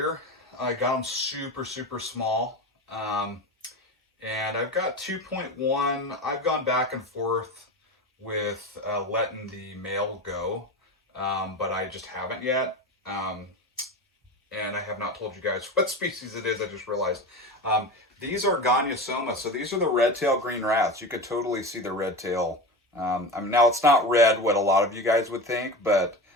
I got them super small, and I've got 2.1. I've gone back and forth with letting the male go, but I just haven't yet. And I have not told you guys what species it is. I just realized. These are Gonyosoma. So these are the red-tailed green rats. You could totally see the red tail. Now it's not red, what a lot of you guys would think, but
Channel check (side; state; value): both; normal; correlation 0.26